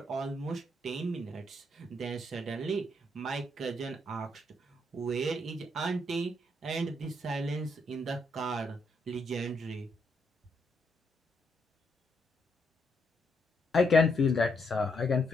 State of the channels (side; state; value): both; normal; correlation 0.76